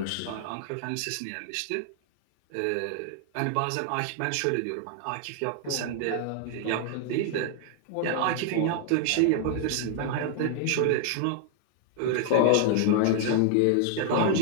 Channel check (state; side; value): different; both; correlation 0.00